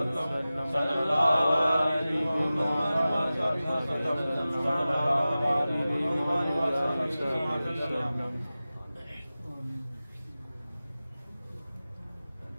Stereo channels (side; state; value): both; inverted; correlation -0.96